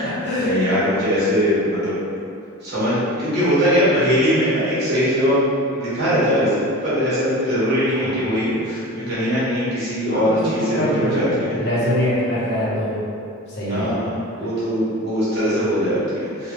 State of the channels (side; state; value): both; normal; correlation 0.34